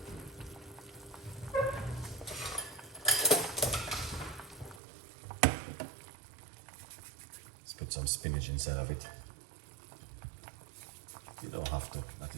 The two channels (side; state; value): left; drops out; at 4.8 s